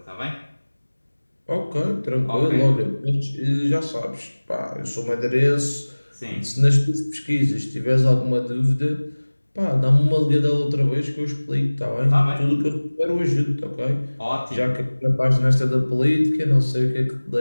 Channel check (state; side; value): inverted; both; correlation -1.00